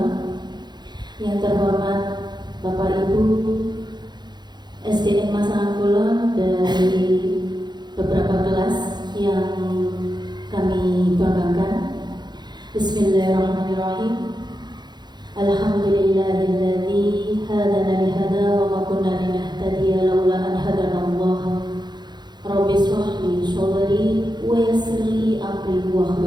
yang terhormat Bapak Ibu SDN Masangangkulo dari beberapa kelas yang kami banggakan. Bismillahirrahmanirrahim. Alhamdulillahilladzi hadana lihada wa ma kunna linahtadiya laula an hadanallah. Rabbi shrah li sadri wa yassir li amri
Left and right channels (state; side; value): late; left; 0.21 ms